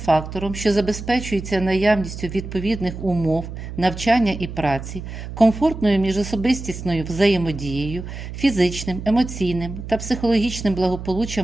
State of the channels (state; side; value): noise; right; hum, 9 dB below the sound